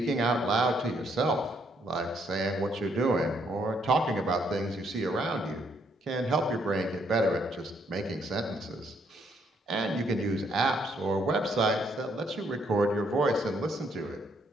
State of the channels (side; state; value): both; normal; correlation 0.71